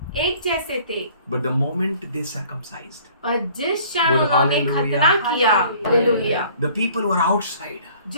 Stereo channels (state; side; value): inverted; both; correlation -0.53